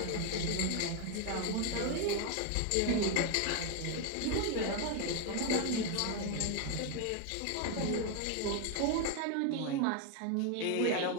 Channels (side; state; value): both; different; correlation 0.01